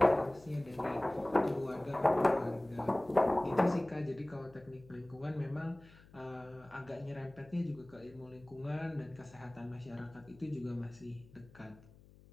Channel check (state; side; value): noise; left; hum, 24 dB below the sound